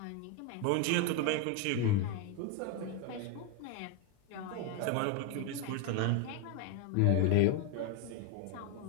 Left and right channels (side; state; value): both; different; correlation 0.01